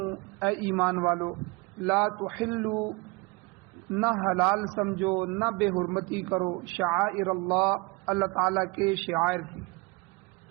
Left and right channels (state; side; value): quieter; left; 26.7 dB